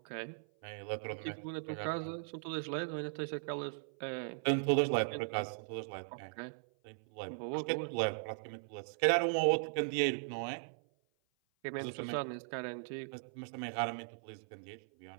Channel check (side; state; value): left; silent; 52 dB below the other